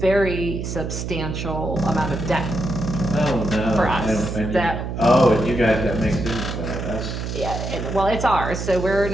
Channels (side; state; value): right; noise; hum, 5 dB below the sound